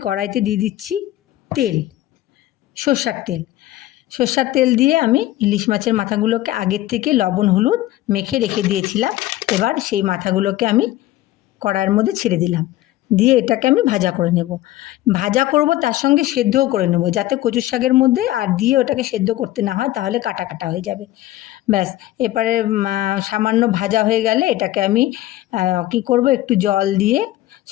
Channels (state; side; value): quieter; right; 15.5 dB